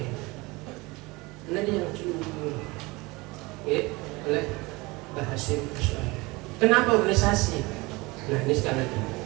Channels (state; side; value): quieter; left; 23.6 dB